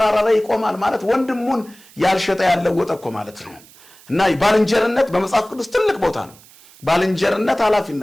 ላይ ይቆማል ማለት ወንድሙን ያልሸጠ ያለወጠ እኮ ማለት ነው። እና ባልንጀርነት በመጽሐፍ ቅዱስ ትልቅ ቦታ ነው። ባልንጀርነት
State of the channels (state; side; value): noise; right; hiss, 24 dB below the sound